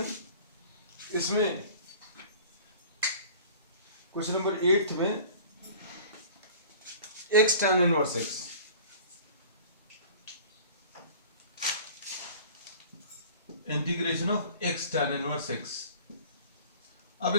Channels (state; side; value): inverted; both; correlation -0.45